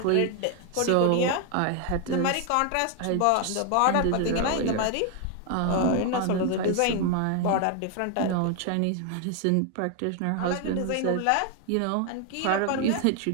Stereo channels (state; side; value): different; both; correlation 0.01